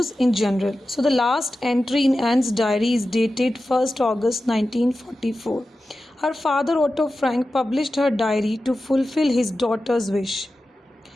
in general. So the last entry in Anne's diary is dated 1st August 1944. Her father Otto Frank published her diary to fulfill his daughter's wish.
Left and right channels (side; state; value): both; normal; correlation 0.93